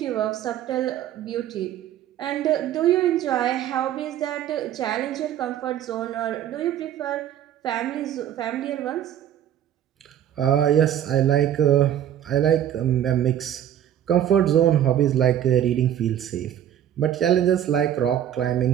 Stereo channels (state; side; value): quieter; left; 10.7 dB